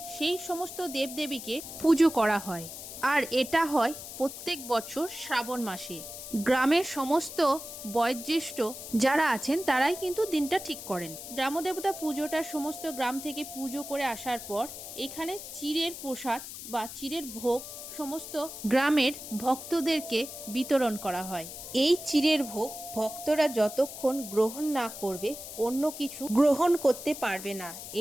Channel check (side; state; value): left; noise; hiss, 11 dB below the sound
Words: সেই সমস্ত দেবদেবীকে পুজো করা হয়। আর এটা হয় প্রত্যেক বছর শ্রাবণ মাসে। গ্রামের সমস্ত বয়োজ্যেষ্ঠ যারা আছেন তারাই কিন্তু দিনটা ঠিক করেন। গ্রামদেবতা পুজোটা সমস্ত গ্রাম থেকে পুজো করে আসার পর এখানে চিড়ের প্রসাদ বা চিড়ের ভোগ সমস্ত গ্রামের ভক্তদেরকে বিতরণ করা হয়। এই চিড়ের ভোগ ভক্তরা যতক্ষণ গ্রহণ না করবে অন্য কিছু গ্রহণ করতে পারবে না।